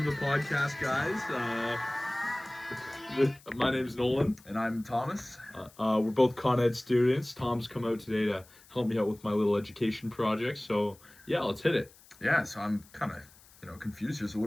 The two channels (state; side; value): noise; left; hiss, 25 dB below the sound